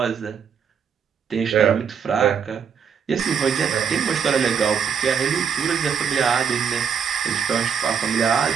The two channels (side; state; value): left; quieter; 7.0 dB